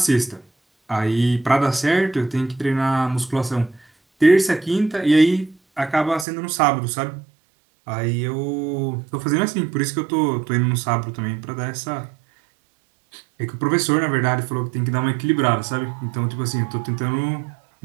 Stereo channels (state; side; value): drops out; left; at 6.2 s